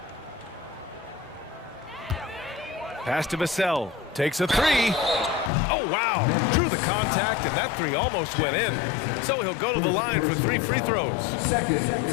Pass to Vassell. Takes a three. Oh, wow. Drew the contact, and that three almost went in. So he'll go to the line for 3 free throws. Second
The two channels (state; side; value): drops out; right; at 5.5 s